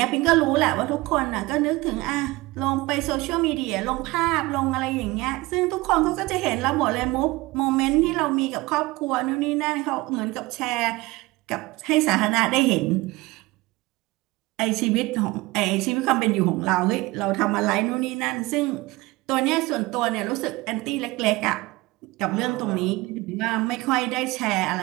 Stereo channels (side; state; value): left; quieter; 21.5 dB